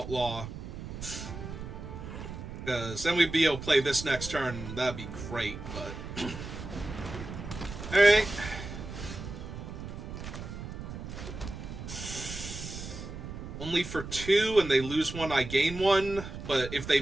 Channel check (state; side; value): noise; right; rumble, 9 dB below the sound